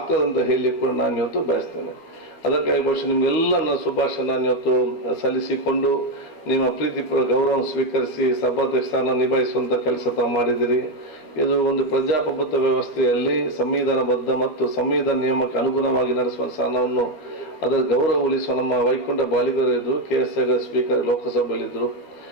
ಅಂತ ಹೇಳಿ ಕೂಡ ನಾನು ಇವತ್ತು ಬಯಸ್ತೇನೆ. ಅದಕ್ಕಾಗಿ ಬಹುಶಃ ನಿಮಗೆಲ್ಲ ನನ್ನ ಶುಭಾಶಯ ನಾನು ಇವತ್ತು ಸಲ್ಲಿಸಿಕೊಂಡು ನಿಮ್ಮ ಪ್ರೀತಿಪೂರ್ವ ಗೌರವ ಸ್ವೀಕರಿಸಿ ಸಭಾಧ್ಯಕ್ಷ ಸ್ಥಾನ ನಿಭಾಯಿಸುವಂಥ ಕೆಲಸ ತಾವು ಮಾಡಿದಿರಿ. ಇದು ಒಂದು ಪ್ರಜಾಪ್ರಭುತ್ವ ವ್ಯವಸ್ಥೆಯಲ್ಲಿ ಸಂವಿಧಾನಬದ್ಧ ಮತ್ತು ಸಂವಿಧಾನ ನಿಯಮಕ್ಕೆ ಅನುಗುಣವಾಗಿ ನಡೆಸುವ ಸ್ಥಾನವನ್ನು ಅದರ ಗೌರವ ಉಳಿಸುವ ನಮ್ಮ ವೈಕುಂಠ ಬಾಲಿಗರಿದ್ದರು, KS ಸ್ಪೀಕರ್ ಲೋಕಸಭೆಯಲ್ಲಿದ್ದರು.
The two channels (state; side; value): late; right; 12 ms